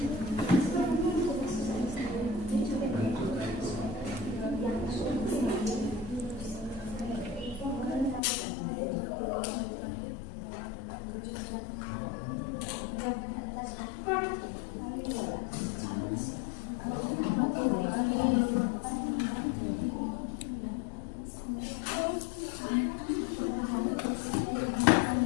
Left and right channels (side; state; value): right; drops out; at 8.2 s